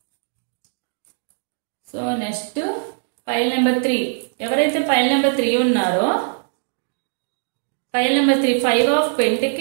So next pile number 3. ఎవరైతే ఫైల్ నెంబర్ 3 ఉన్నారో, pile number 3 5 of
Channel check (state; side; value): silent; left; digital silence